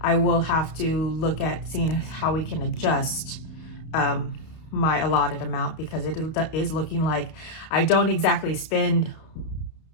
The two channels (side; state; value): right; late; 32 ms